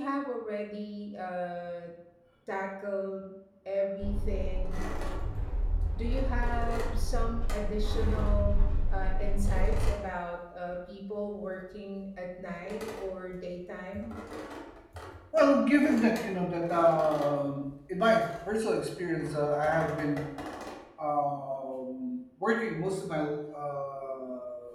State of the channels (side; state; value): both; identical; correlation 1.00